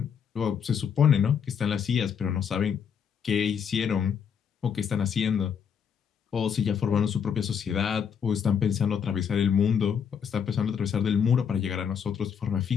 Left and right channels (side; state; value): right; quieter; 7.4 dB